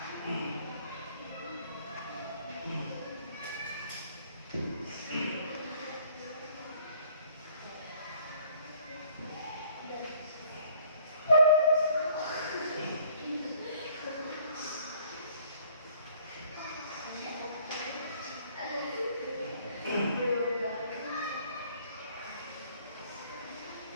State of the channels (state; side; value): inverted; both; correlation -0.58